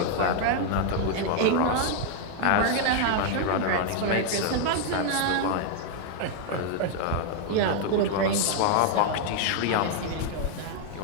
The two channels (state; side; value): different; both; correlation 0.00